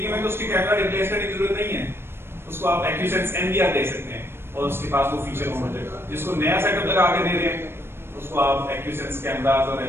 है तो उसकी कैमरा रिप्लेस करने की जरूरत नहीं है, उसको आप एक्यूसेंस NVR दे सकते हैं और उसके पास वो फीचर हो जाएगा। जिसको नया सेटअप लगा के दे रहे हैं उसको आप एक्यूसेंस कैमरास और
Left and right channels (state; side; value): late; left; 0.12 ms